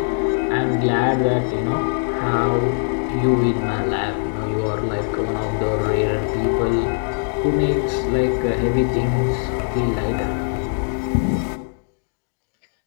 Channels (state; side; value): silent; right; digital silence